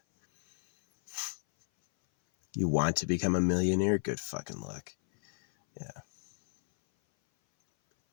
You want to become a millionaire? Good fucking luck. Yeah.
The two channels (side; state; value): right; silent; 57 dB below the other